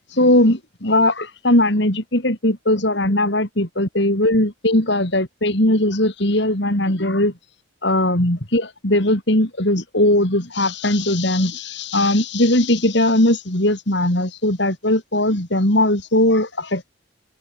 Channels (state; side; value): normal; both; correlation 0.18